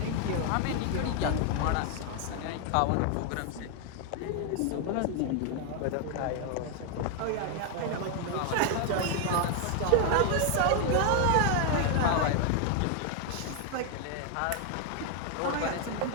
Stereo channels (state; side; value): different; both; correlation 0.00